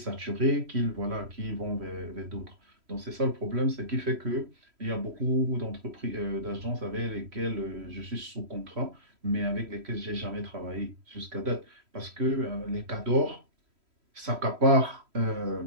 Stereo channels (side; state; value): left; late; 3.1 ms